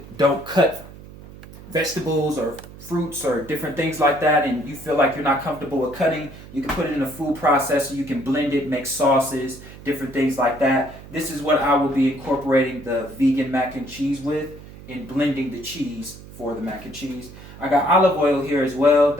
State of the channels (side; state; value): right; noise; hum, 17 dB below the sound